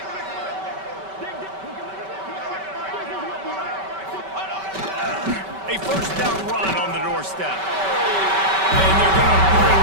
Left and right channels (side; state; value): left; late; 5.2 ms